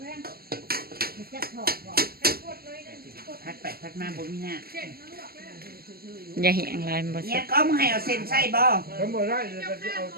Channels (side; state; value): left; late; 0.45 ms